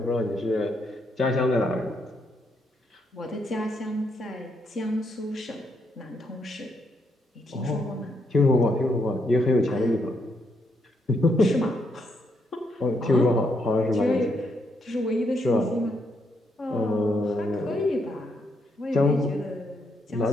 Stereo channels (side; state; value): both; normal; correlation 0.77